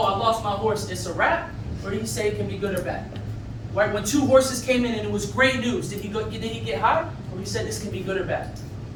I lost my horse, it's a wrap? Or did he say it can be good or bad? Right? When 2 horses came in and it was great news, did he get high? Or he said this can be good or bad?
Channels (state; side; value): identical; both; correlation 1.00